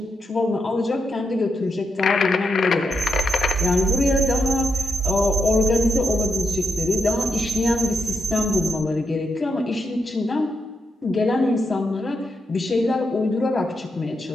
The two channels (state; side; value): normal; both; correlation 0.83